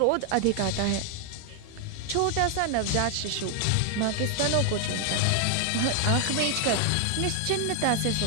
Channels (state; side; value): different; both; correlation 0.00